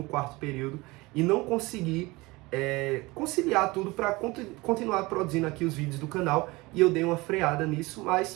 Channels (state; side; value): quieter; left; 22.5 dB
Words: quarto período e não consegui conciliar tudo para continuar produzindo aqui os vídeos do canal, e eu dei uma freada nisso,